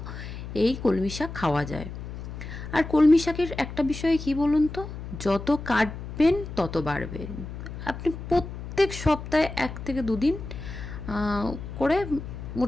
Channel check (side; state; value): left; noise; hum, 9 dB below the sound